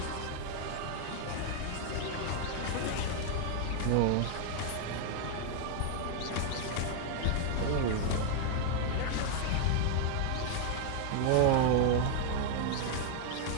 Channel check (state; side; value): different; both; correlation 0.00